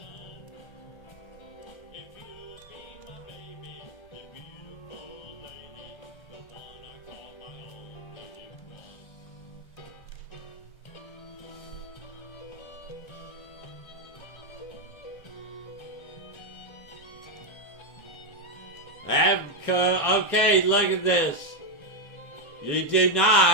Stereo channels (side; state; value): both; normal; correlation 0.02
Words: Okay, look at this. You do